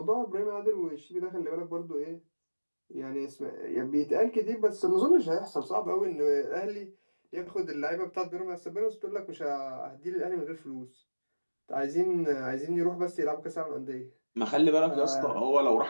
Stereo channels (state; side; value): inverted; both; correlation -1.00